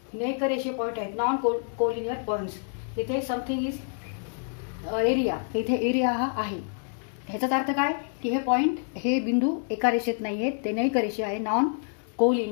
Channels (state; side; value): silent; right; 60 dB below the other